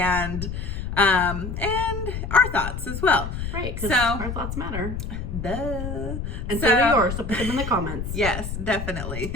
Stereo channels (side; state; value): left; noise; rumble, 5 dB below the sound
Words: our thoughts as well. Right, because so, our thoughts matter. Duh. And so do yours, so put them in the comments. Yes, definitely.